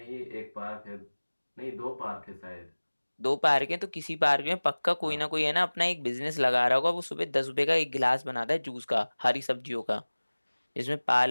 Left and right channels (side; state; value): both; inverted; correlation -1.00